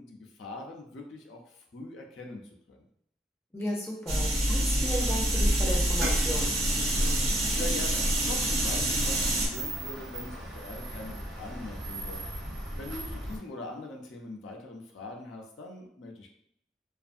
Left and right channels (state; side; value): normal; both; correlation 0.69